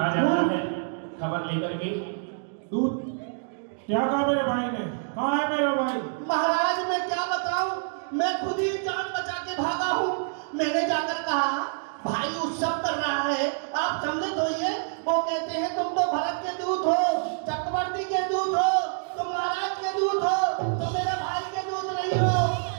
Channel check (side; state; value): left; silent; digital silence